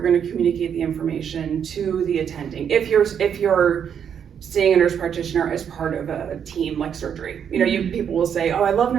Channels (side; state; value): left; quieter; 8.1 dB